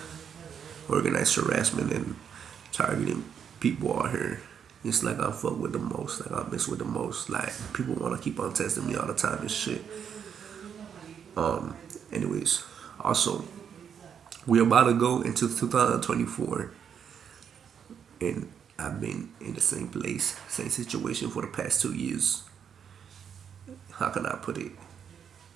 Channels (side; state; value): left; quieter; 7.7 dB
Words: organized harassment and targeting people out here. It's like I fuck with the most, like I mess with the most. Like people wanna keep on testing me all the time and shit. Anyways, also we're about to go into 2024, and I've been in the same place, same situation for the past 2 years. How can I put it?